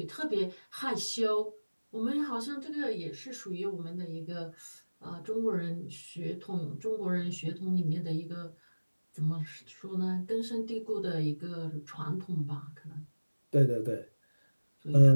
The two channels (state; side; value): inverted; both; correlation -1.00